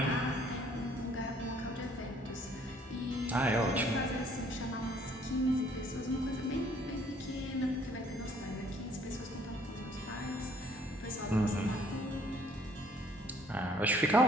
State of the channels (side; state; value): both; normal; correlation 0.61